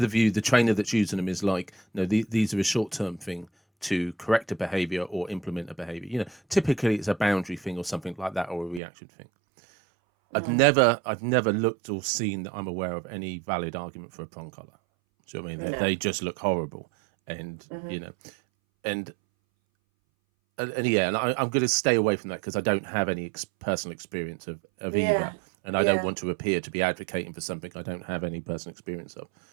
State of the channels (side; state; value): left; drops out; at 8.8 s